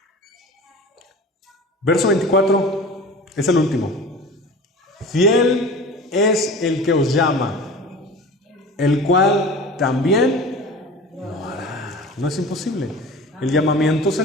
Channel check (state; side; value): normal; both; correlation 0.37